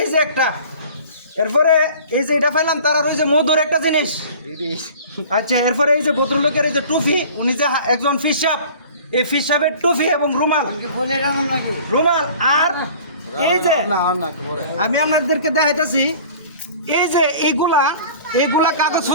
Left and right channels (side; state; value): both; inverted; correlation -0.45